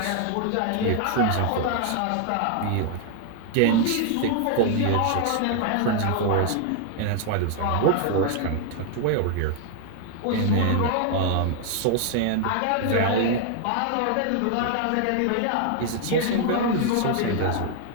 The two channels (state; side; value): different; both; correlation 0.00